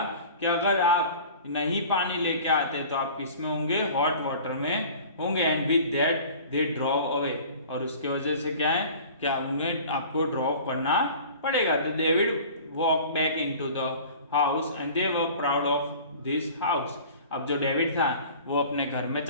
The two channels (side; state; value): both; inverted; correlation -0.43